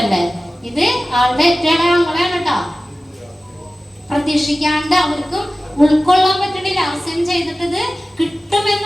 ഇത്, ആളുടെ ഏറ്റവും ഞങ്ങളെയാണ് കേട്ടോ. പ്രതീക്ഷിക്കാണ്ട് അവർക്കും ഉൾക്കൊള്ളാൻ പറ്റണില്ല. അവസാനം ചെയ്തിട്ട് ഇത്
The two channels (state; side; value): normal; both; correlation 0.96